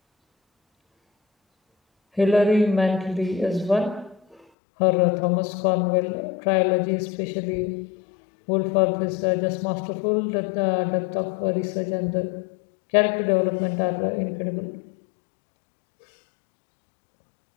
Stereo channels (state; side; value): drops out; right; at 4.4 s